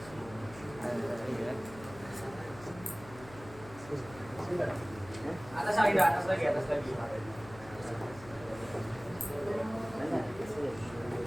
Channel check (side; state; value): left; noise; hum, 18 dB below the sound